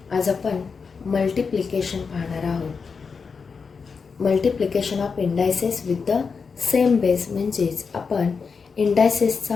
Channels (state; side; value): quieter; right; 5.3 dB